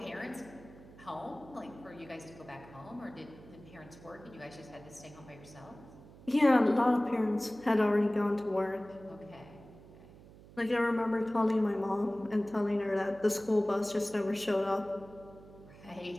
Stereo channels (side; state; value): right; noise; hum, 20 dB below the sound